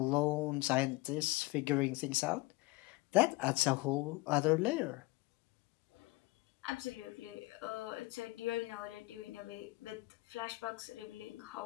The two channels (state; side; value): quieter; right; 21.6 dB